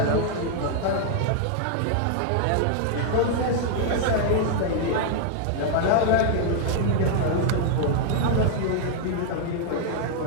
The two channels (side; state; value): both; different; correlation 0.00